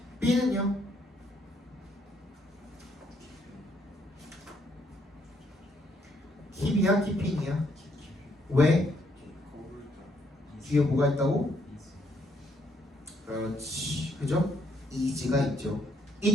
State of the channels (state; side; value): normal; both; correlation 0.71